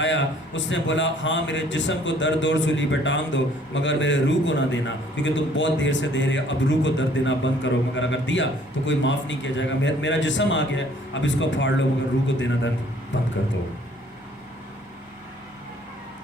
اس نے بولا ہاں میرے جسم کو درد اور سولی پہ ٹانگ دو مگر میرے روح کو نہ دینا، کیونکہ تم بہت دیر سے دے رہے اب روح کو درد دینا بند کرو. مگر اگر دیا تو کوئی معاف نہیں کیا جائے گا. میرا جسم آ گیا اب اس کو پھاڑ لو مگر روح کو دینا درد بند کر دو.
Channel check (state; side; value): normal; both; correlation 0.59